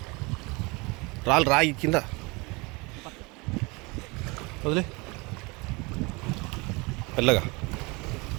రాయి కింద వదిలే. మెల్లగా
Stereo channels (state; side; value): quieter; left; 26.6 dB